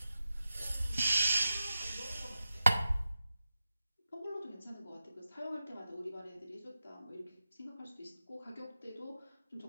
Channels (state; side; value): inverted; both; correlation -0.91